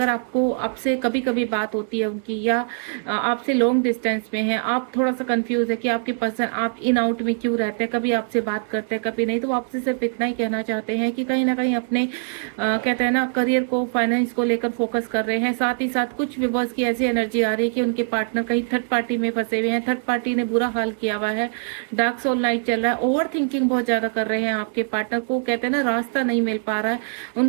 आपको आपसे कभी कभी बात होती है उनकी, या आपसे लॉन्ग डिस्टेंस में है, आप थोड़ा सा कंफ्यूज है कि आपके पर्सन आप इन आउट में क्यों रहते हैं, कभी आपसे बात करते हैं कभी नहीं। तो आपसे सिर्फ इतना ही कहना चाहते हैं कि कहीं ना कहीं अपने कहते हैं ना करियर को, फाइनेंस को लेकर फोकस कर रहे हैं। साथ ही साथ कुछ व्यूअर्स की ऐसी एनर्जी आ रही है कि उनके पार्टनर कहीं थर्ड पार्टी में फंसे हुए हैं, थर्ड पार्टी ने बुरा हाल किया हुआ है, डार्क सोल नाइट चल रहा है, ओवर थिंकिंग बहुत ज्यादा कर रहे हैं आपके पार्टनर को, कहते हैं ना रास्ता नहीं मिल पा रहा है।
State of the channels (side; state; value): left; silent; 64 dB below the other